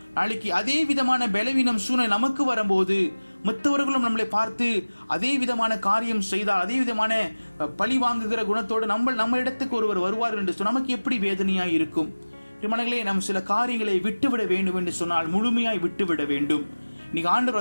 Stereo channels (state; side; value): inverted; both; correlation -1.00